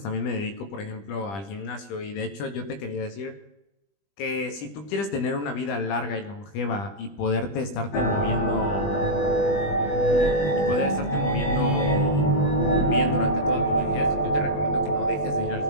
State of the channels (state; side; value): late; right; 20 ms